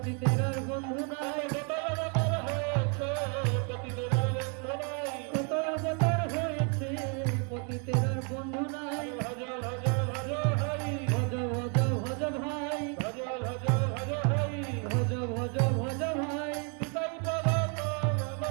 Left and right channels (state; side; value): quieter; left; 38.0 dB